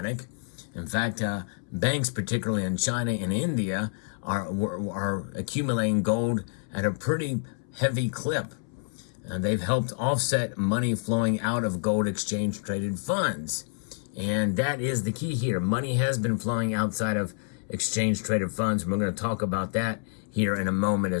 In fact, banks, particularly in China and India, are accumulating gold at a pretty heavy clip. They've helped offset money flowing out of gold exchange traded funds. And that is the key here. Money has been flowing outside of exchange traded funds. We're going to talk about that here in a moment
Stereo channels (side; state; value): right; silent; 59 dB below the other